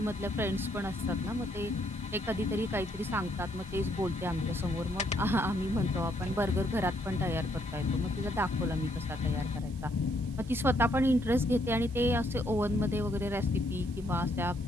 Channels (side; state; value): right; noise; hiss, 23 dB below the sound